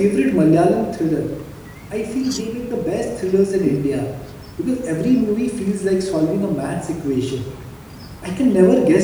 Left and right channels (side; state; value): both; identical; correlation 1.00